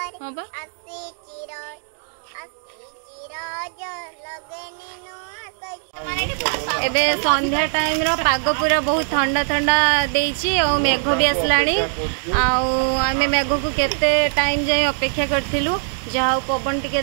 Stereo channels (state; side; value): silent; left; digital silence